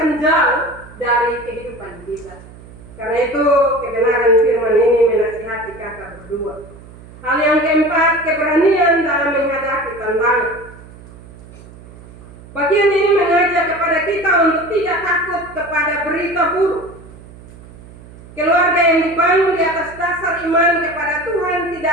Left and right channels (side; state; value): right; noise; hum, 20 dB below the sound